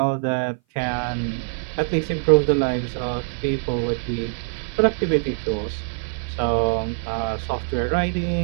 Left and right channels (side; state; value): left; silent; 57 dB below the other